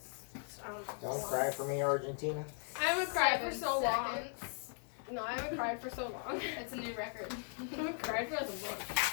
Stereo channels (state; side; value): silent; right; 52 dB below the other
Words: I don't know. Don't cry for me, Argentina. I haven't cried for 7 so long. seconds. No, I haven't cried for so long. It's a new record. I haven't cried for like a